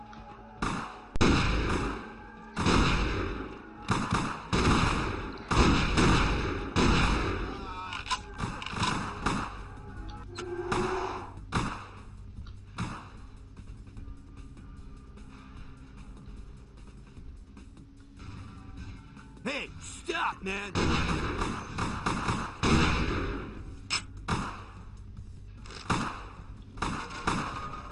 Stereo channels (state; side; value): identical; both; correlation 1.00